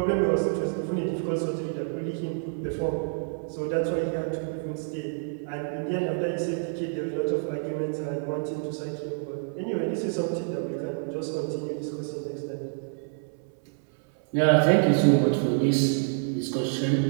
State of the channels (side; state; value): left; silent; 60 dB below the other